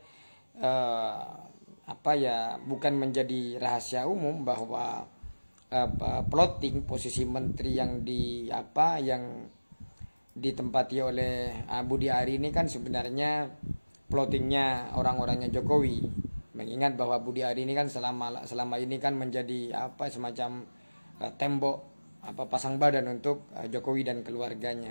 bukan menjadi rahasia umum bahwa plotting posisi menteri yang ditempati oleh Budi Ari ini kan sebenarnya plottingnya orang-orangnya Jokowi. Mengingat bahwa Budi Ari ini kan selama ini kan menjadi semacam tembok pasang badan untuk Jokowi dan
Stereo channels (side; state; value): both; inverted; correlation -1.00